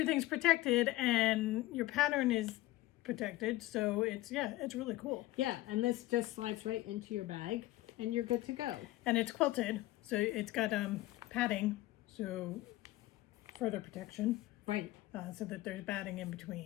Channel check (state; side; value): quieter; right; 17.2 dB